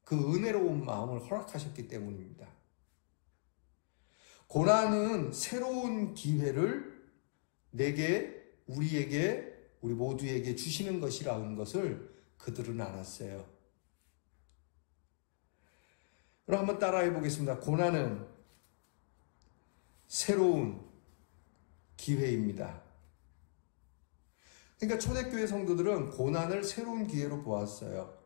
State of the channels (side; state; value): right; silent; digital silence